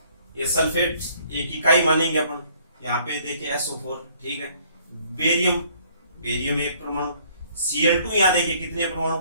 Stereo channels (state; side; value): inverted; both; correlation -0.61